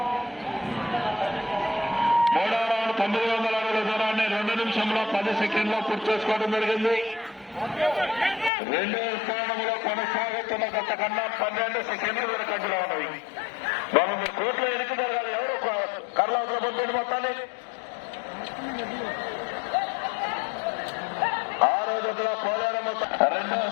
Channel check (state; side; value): drops out; right; at 8.5 s